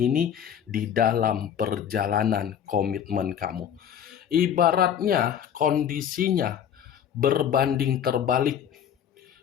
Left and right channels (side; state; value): right; quieter; 8.9 dB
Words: di dalam perjalanan komitmen kamu. Ibaratnya kondisinya berbanding terbalik.